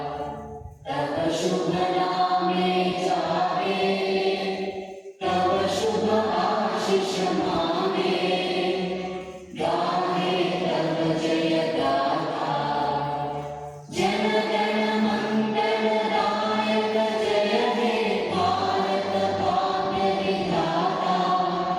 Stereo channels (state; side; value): identical; both; correlation 1.00